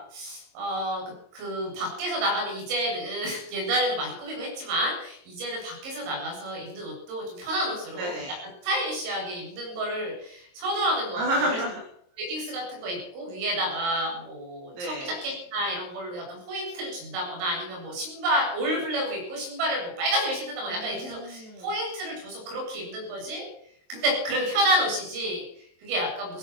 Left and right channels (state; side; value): late; left; 22 ms